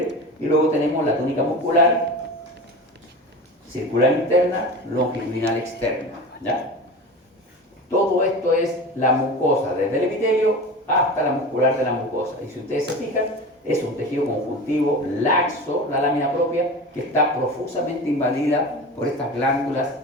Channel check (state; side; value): normal; both; correlation 0.31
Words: Y luego tenemos la túnica muscular, circular interna, longitudinal externa. ¿Ya? Todo esto es la mucosa, desde el epitelio hasta la muscular de la mucosa. Y si ustedes se fijan, es un tejido conjuntivo laxo, la lámina propia, que está profusamente invadida por estas glándulas